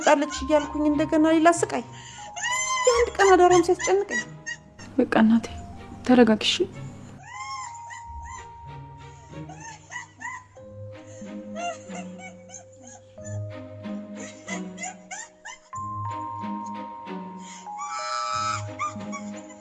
እያልኩኝ እንደገና ሌላ ስቃይ የአንድ ቀን አዳራም ሲያስጨንቀኝ በቃ እናቴ ተረጋግሽ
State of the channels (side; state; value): both; identical; correlation 1.00